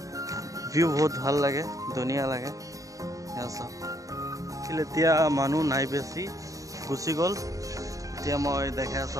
ভিউ বহুত ভাল লাগে, ধুনীয়া লাগে। এয়া চাওক, এতিয়া মানুহ নাই বেছি, গুচি গ'ল। এতিয়া মই দেখাই আছো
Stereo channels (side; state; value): left; late; 0.16 ms